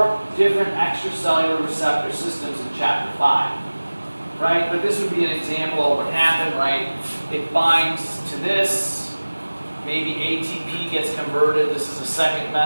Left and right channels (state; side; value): inverted; both; correlation -1.00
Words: different extracellular receptor systems in chapter 5, right? But this would be an example of what happened, right? It binds to this. Maybe ATP gets converted. This is a second